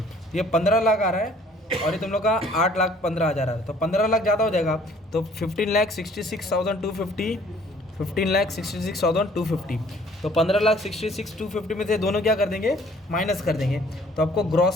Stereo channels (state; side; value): normal; both; correlation 0.57